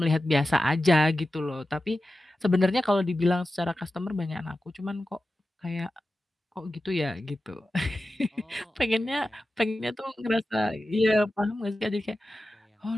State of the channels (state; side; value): normal; both; correlation 0.93